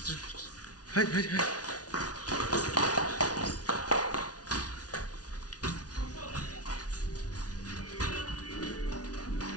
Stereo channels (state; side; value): late; right; 0.68 ms